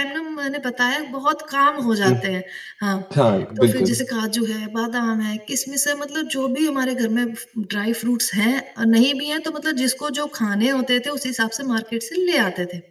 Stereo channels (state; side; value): identical; both; correlation 1.00